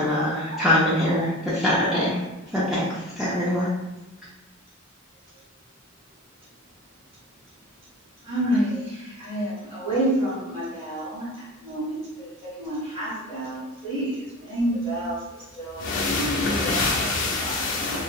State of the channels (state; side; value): normal; both; correlation 0.33